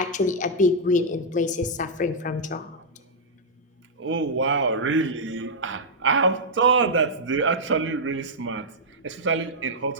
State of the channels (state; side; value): normal; both; correlation -0.06